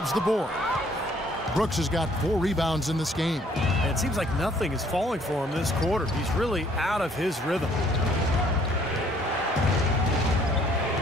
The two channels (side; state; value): both; normal; correlation 0.62